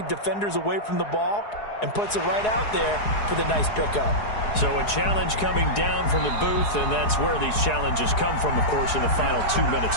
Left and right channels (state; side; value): late; right; 4.8 ms